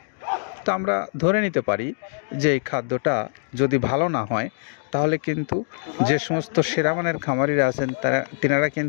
তো আমরা ধরে নিতে পারি যে এই খাদ্যটা যদি ভালো না হয় তাহলে কিন্তু যে সমস্ত সেরামানের খামারিরা আছেন তিনারা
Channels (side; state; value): right; silent; digital silence